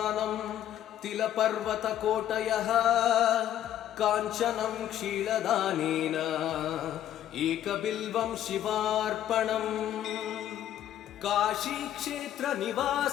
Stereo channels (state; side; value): quieter; right; 11.5 dB